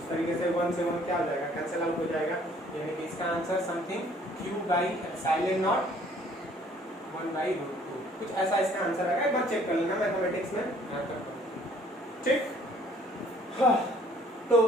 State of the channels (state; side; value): normal; both; correlation 0.59